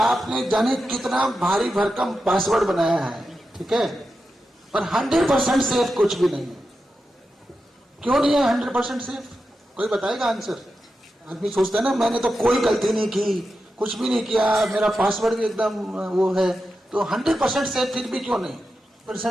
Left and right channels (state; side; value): normal; both; correlation 0.90